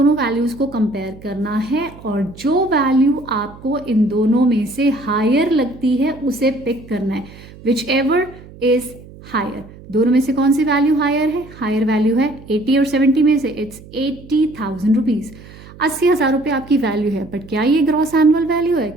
वैल्यूज़ को कंपेयर करना है और जो वैल्यू आपको इन दोनों में से हायर लगती है उसे पिक करना है, विच एवर इज हायर। दोनों में से कौन सी वैल्यू हायर है? हायर वैल्यू है 80 और 70 में से इट्स 80,000 रुपीज़। 80,000 रुपये आपकी वैल्यू है, बट क्या ये ग्रॉस एनुअल वैल्यू है?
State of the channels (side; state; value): right; noise; hum, 19 dB below the sound